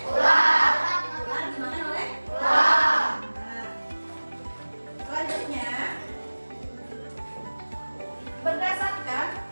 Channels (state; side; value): inverted; both; correlation -1.00